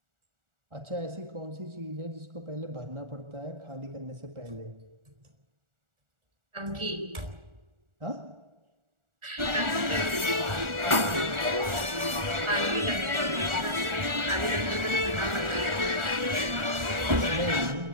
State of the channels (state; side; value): late; left; 1.4 ms